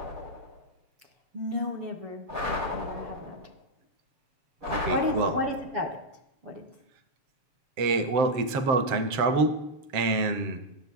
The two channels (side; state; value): left; late; 7.5 ms